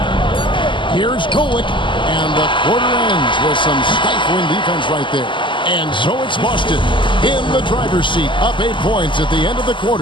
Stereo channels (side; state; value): right; late; 0.24 ms